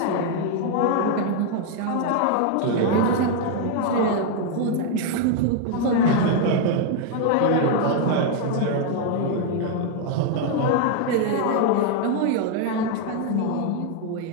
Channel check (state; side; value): different; both; correlation 0.00